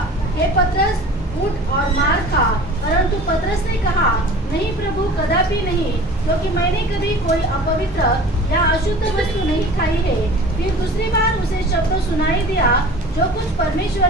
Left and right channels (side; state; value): both; normal; correlation 0.42